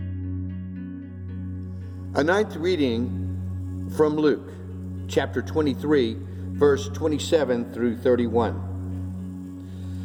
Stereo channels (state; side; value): identical; both; correlation 1.00